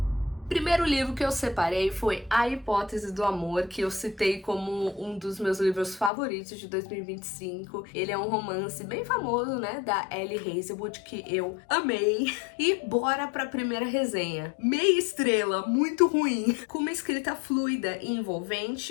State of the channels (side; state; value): right; drops out; at 6.1 s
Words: Primeiro livro que eu separei foi A Hipótese do Amor, que eu citei como um dos meus livros favoritos de 2025. Ele é um romance bem famoso, né, da Ellie Hazelwood, que eu amei. E bora pra primeira resenha. Meia estrela, muito ruim. Com uma escrita fluida e